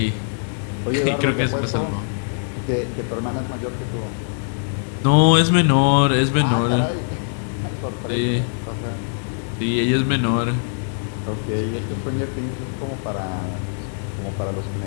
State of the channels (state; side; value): silent; right; digital silence